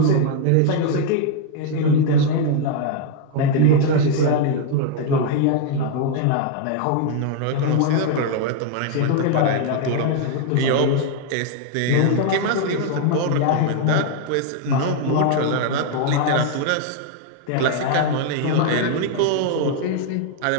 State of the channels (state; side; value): different; both; correlation 0.00